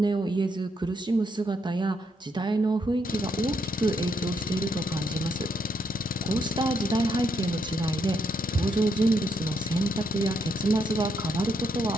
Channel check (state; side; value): normal; both; correlation 0.77